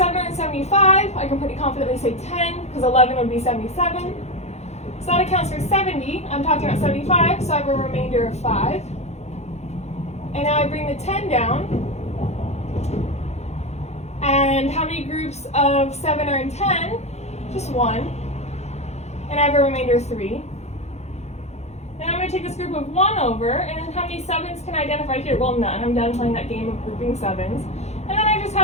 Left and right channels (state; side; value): late; right; 0.32 ms